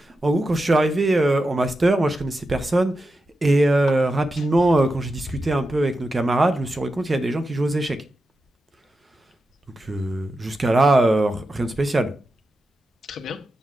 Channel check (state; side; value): normal; both; correlation 0.90